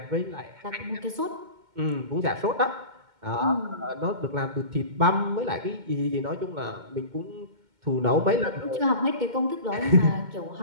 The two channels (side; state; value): left; late; 2.1 ms